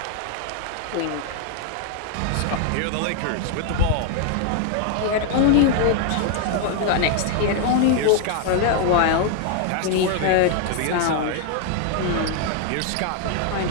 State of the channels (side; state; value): both; different; correlation 0.00